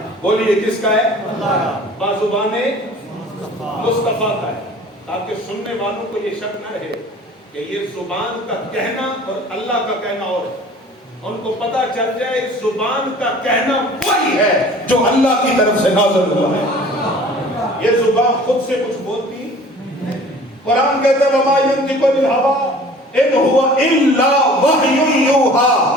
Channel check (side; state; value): both; normal; correlation 0.47